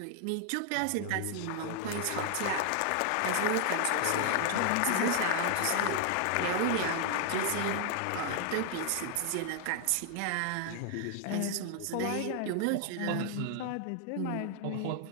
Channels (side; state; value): both; different; correlation 0.00